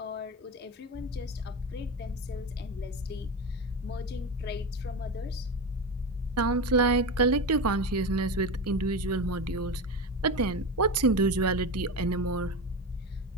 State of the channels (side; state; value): both; normal; correlation 0.21